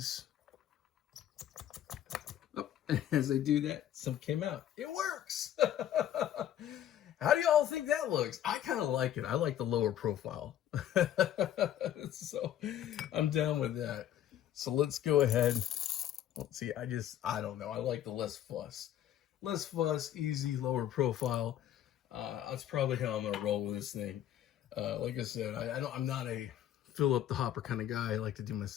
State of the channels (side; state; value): right; quieter; 11.3 dB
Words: oh, as I do that, some came out. It works. How do y'all think that looks? I kind of like it. I like the lower profile. So I'm down with that. So let's go ahead. Let's see. I don't know. I like the less fuss. Less fuss, easy, lower profile. That's probably how I'm gonna roll with this thing. Like I said, I'm not a fill up the hopper kind of guy. I like to do my